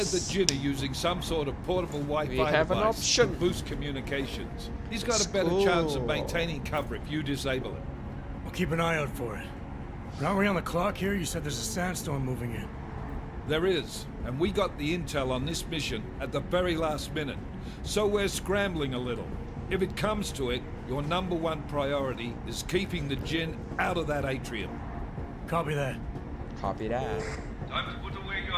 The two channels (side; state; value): both; identical; correlation 1.00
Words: said the Jinn are using some sort of portable Wi-Fi We have an device option. to boost communications. He's got a better Cool. chance of maintaining cover if you disable it. I'll keep an eye out for it. But aren't we on the clock here? You said there's a sandstorm moving in. There is, and we got the intel on this mission at the very last minute, so we're scrambling a little. If it comes to it, your #1 priority is keeping the Jinn out of that atrium. Copy that. Copy that. Time to put away